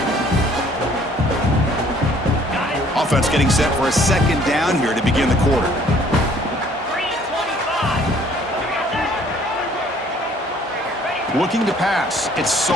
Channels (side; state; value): both; normal; correlation 0.58